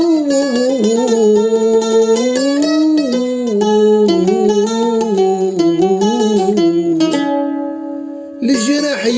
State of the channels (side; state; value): both; identical; correlation 1.00